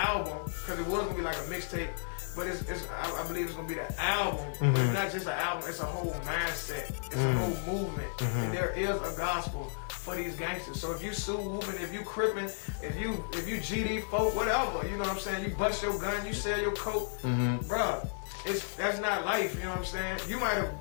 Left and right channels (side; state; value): right; silent; digital silence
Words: because it was gonna be like a mixtape, but I believe it's gonna be the album. But it's not just an album; it's a whole mindset, it's a whole movement, and there is a gospel for these gangsters. So if you sue whooping, if you crippin', if you GD folk, whatever, you know what I'm saying? You bust your gun, you sell your coke, bruh. That's not life, you know what I'm saying? You might have